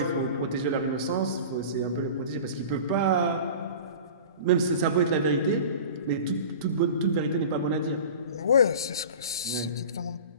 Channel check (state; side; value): inverted; both; correlation -0.37